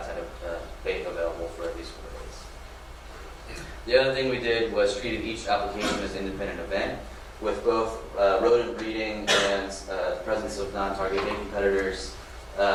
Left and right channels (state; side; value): identical; both; correlation 1.00